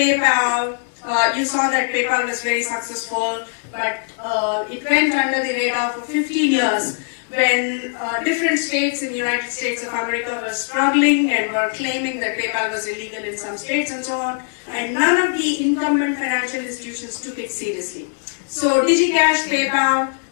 You saw that PayPal was very successful, but it went under the radar for 15 years when different states in the United States of America were struggling and were claiming that PayPal was illegal in some states and so on, and none of the incumbent financial institutions took it seriously. So DigiCash, PayPal,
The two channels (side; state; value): right; silent; 65 dB below the other